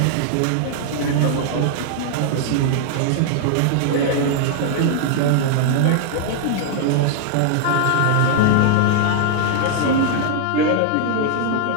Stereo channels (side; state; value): both; different; correlation -0.01